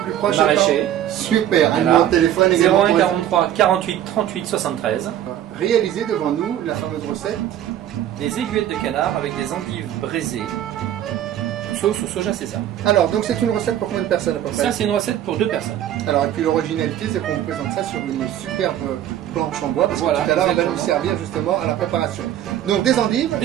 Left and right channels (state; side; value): quieter; left; 11.4 dB